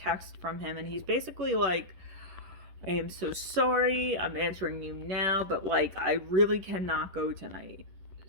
from him, and he's basically like, I am so sorry, I'm answering you now, but like, I really cannot go tonight.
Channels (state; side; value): late; left; 10 ms